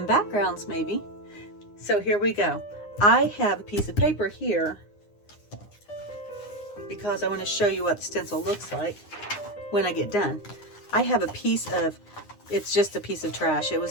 backgrounds maybe. So here we go. I have a piece of paper here because I want to show you what the stencil looks like when I get done. I have a piece of, it's just a piece of trash. It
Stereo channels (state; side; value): late; right; 9.8 ms